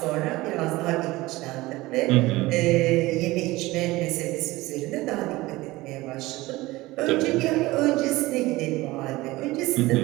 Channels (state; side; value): quieter; left; 19.6 dB